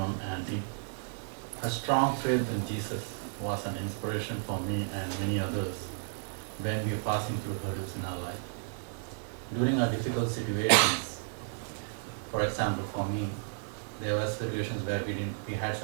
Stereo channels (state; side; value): silent; left; 56 dB below the other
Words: Aunty. Her strong faith in Jesus was an inspiration for me and many others when we were passing through hurdles in our life. During our difficult situations, for example, for me, there were situations where we had